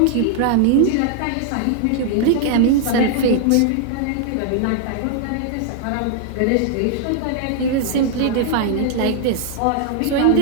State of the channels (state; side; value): different; both; correlation -0.01